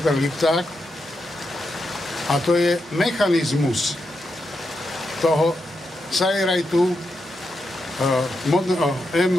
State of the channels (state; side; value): normal; both; correlation 0.85